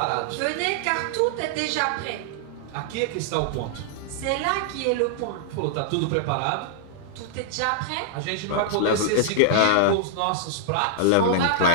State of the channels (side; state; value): both; different; correlation -0.01